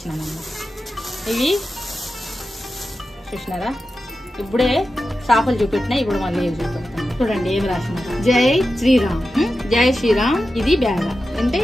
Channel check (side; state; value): both; normal; correlation 0.92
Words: అన్నమాట. ఇవి చూసినారా, ఇప్పుడే చేపలు చూపెట్టినా. ఇప్పుడు మళ్ళీ ఏవి చూపెడతాను. చూడండి ఏమి రాసినారు, జై శ్రీరామ్. ఇది బ్యాగ్ అంటే